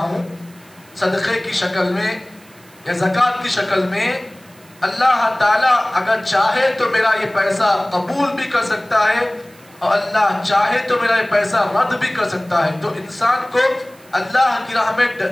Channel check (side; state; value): right; noise; hiss, 27 dB below the sound